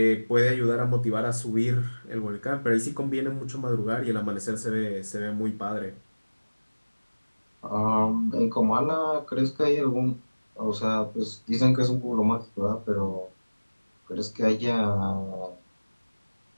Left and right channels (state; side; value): inverted; both; correlation -1.00